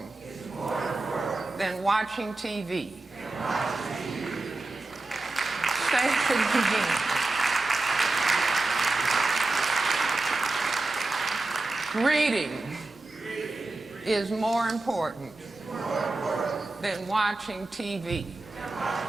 than watching TV. Say it again. Reading is more important than watching TV.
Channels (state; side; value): quieter; left; 3.1 dB